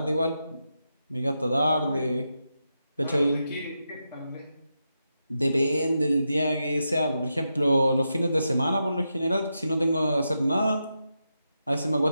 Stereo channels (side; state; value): both; inverted; correlation -0.87